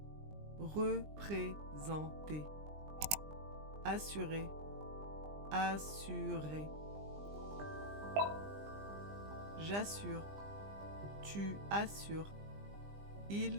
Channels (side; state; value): left; late; 20 ms